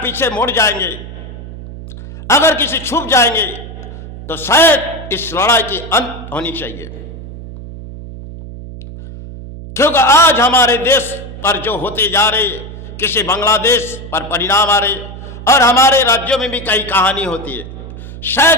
पीछे मुड़ जाएंगे, अगर किसी छुप जाएंगे, तो शायद इस लड़ाई की अंत होनी चाहिए। क्योंकि आज हमारे देश पर जो होते जा रहे, किसी बांग्लादेश पर परिणाम आ रहे और हमारे राज्यों में भी कई कहानी होती है,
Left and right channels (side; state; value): right; noise; hum, 12 dB below the sound